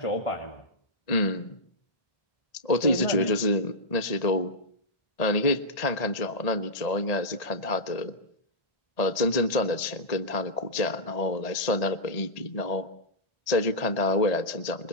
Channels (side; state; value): right; late; 1.8 ms